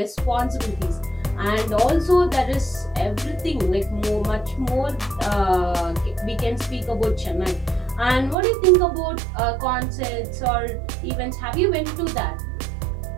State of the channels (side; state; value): left; drops out; at 8.3 s